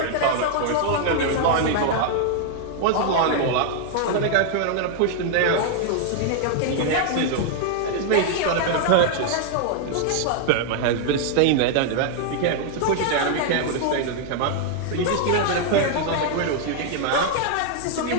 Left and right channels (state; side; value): different; both; correlation 0.00